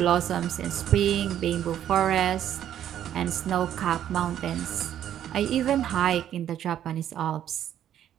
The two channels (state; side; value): quieter; left; 10.7 dB